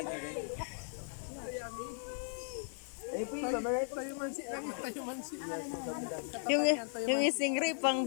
Ayun po yung babarat. Yung stingray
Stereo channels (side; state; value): right; silent; digital silence